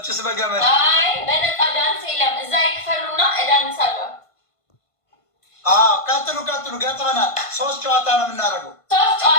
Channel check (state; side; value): late; right; 1.5 ms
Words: በገመድ አይ በነፃ ዳንስ የለም። እዛ ይክፈሉና እዳንሳለሁ። ቀጥሉ ገጥመናል። 3 ጨዋታ ነው የምናደርገው። 3